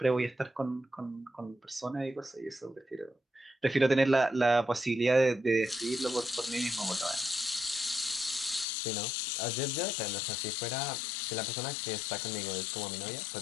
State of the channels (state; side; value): drops out; right; at 8.7 s